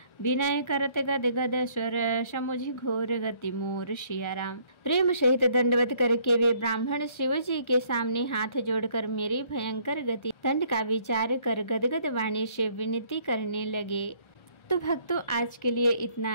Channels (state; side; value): late; right; 1.3 ms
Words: विनय करत गद गद स्वर, समुझि घोर गति मोर। सिया राम। प्रेम सहित दंडवत करके वे ब्राह्मण शिव जी के सामने हाथ जोड़कर मेरी भयंकर गति दंड का विचार कर गदगद वाणी से विनती करने लगे। तो भक्तों, आज के लिए